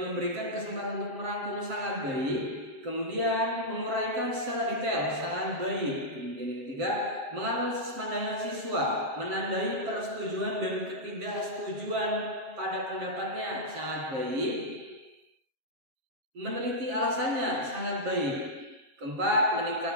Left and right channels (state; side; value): late; left; 7.5 ms